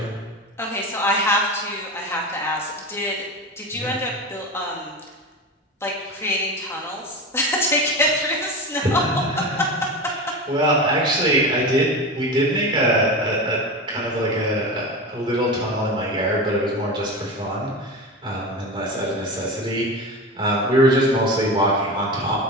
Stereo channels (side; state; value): both; normal; correlation 0.25